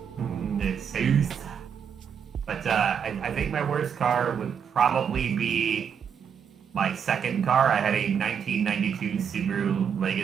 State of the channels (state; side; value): quieter; left; 7.5 dB